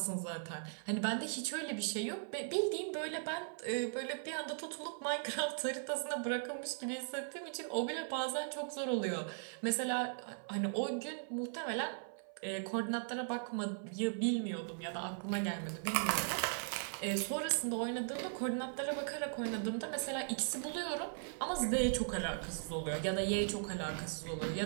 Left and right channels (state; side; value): silent; left; 52 dB below the other